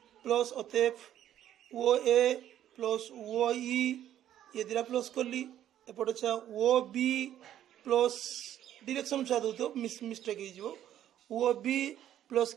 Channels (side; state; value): left; quieter; 11.4 dB